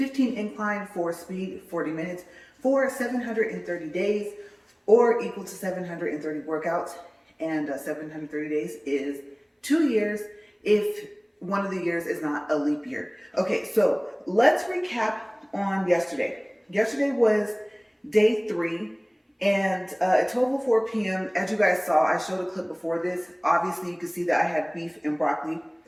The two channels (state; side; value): identical; both; correlation 1.00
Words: incline, 4 speed, 40 minutes for 730 days, or equal to 730 workouts. And 730 days is 2 years if one of the years is not a leap year. Okay, so let's recap on yesterday. Yesterday was day 3, and at 12:04 p.m., as you guys saw, I showed a clip before this. Obviously, you can see that I had beef and broccoli